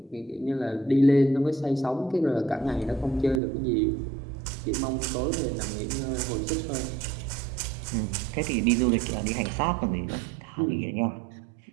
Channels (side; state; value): left; drops out; at 3.4 s